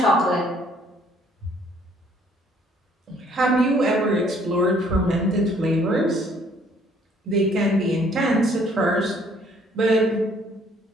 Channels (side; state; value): both; normal; correlation 0.62